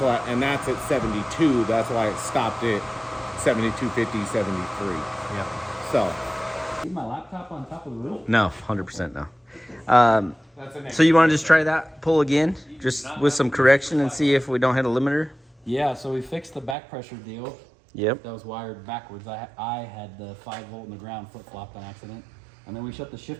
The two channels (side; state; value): left; drops out; at 16.8 s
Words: and that's at 72. That's why it stopped at 72.50, 73. Yeah. So. Leave my laptop on top of the roof? No, 100% no. That's a So you want to just try that pull again, just with some correction, and see if we don't hit a limiter? Yeah, so we fixed the back pressure deal. Yep. That was wired backwards. I had the 5 volt in the ground flip-flopped on accident. And then we shut the